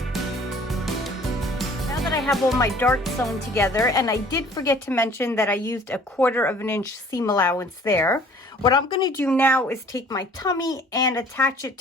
I have all my darts sewn together, and I did forget to mention that I used a 1/4 inch seam allowance there. What I'm going to do now is take my tummy and attach it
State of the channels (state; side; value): normal; both; correlation 0.53